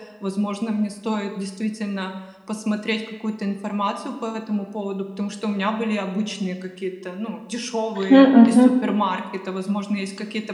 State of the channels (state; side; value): identical; both; correlation 1.00